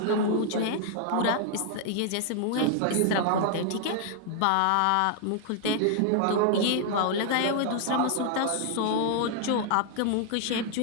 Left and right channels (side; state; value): both; different; correlation 0.00